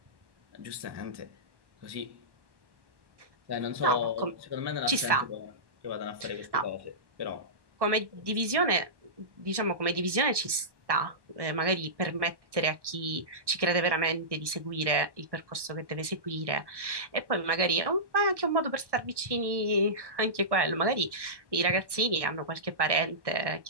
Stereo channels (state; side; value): late; left; 1.1 ms